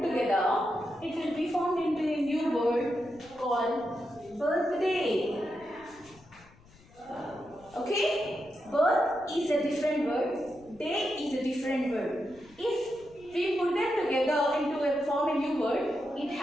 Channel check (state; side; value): noise; left; rumble, 26 dB below the sound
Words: together, it will be formed into a new word called birthday. Okay? Birth is a different word. Day is a different word. If we put them together into form a new word, it